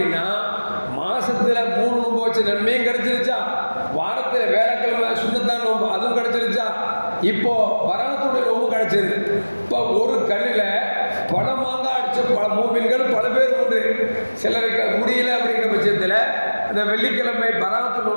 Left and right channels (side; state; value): both; inverted; correlation -1.00